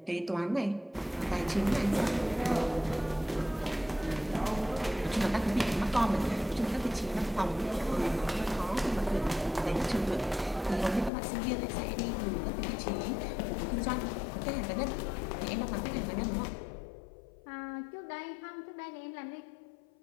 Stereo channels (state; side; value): drops out; right; at 11.1 s